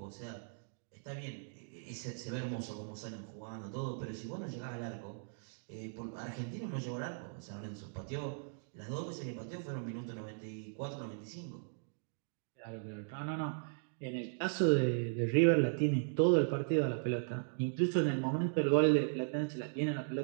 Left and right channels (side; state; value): left; silent; digital silence